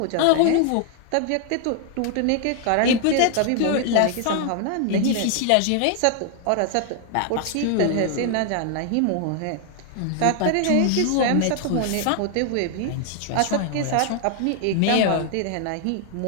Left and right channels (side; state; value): both; different; correlation 0.00